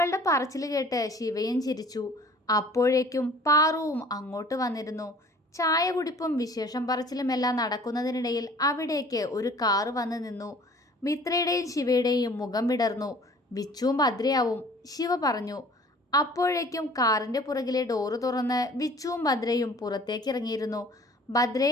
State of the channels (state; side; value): normal; both; correlation 0.50